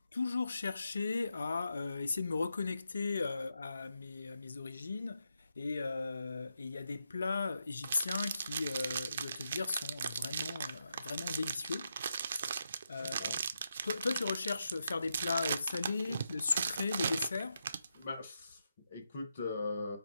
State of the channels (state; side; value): inverted; both; correlation -0.84